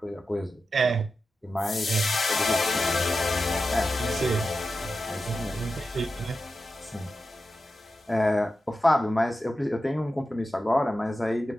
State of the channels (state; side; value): normal; both; correlation 0.91